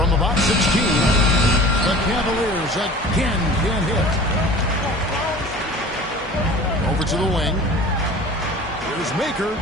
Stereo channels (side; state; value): both; normal; correlation 0.42